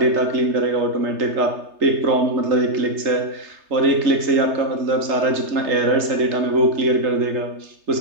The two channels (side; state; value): left; late; 3.3 ms